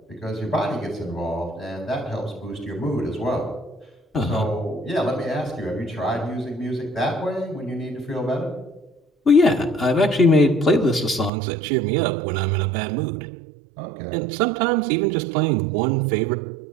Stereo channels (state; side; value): drops out; left; at 11.3 s